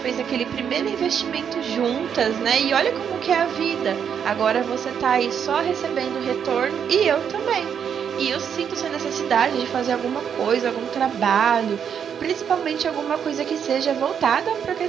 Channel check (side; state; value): left; quieter; 7.8 dB